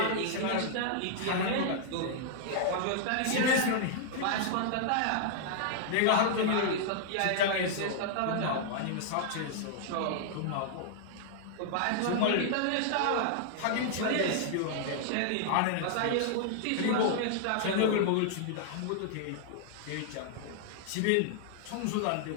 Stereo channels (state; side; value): different; both; correlation -0.01